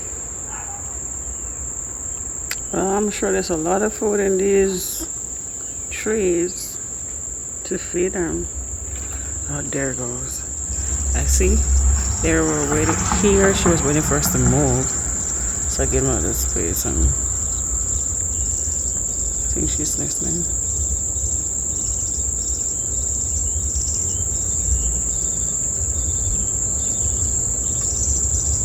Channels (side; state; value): both; identical; correlation 1.00